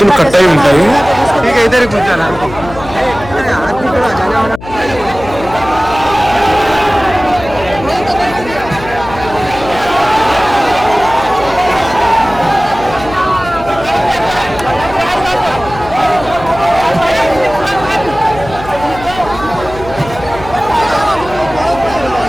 కట్ అయి ఉంటాయి.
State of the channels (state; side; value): noise; left; hum, 14 dB below the sound